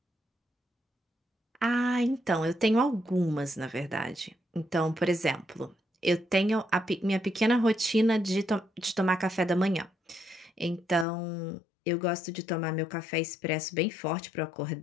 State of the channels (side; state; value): right; drops out; at 11.1 s